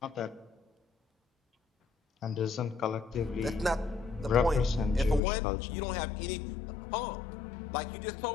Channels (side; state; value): right; drops out; at 5.2 s